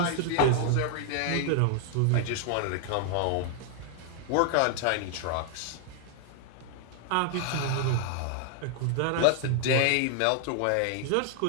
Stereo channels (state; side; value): different; both; correlation 0.00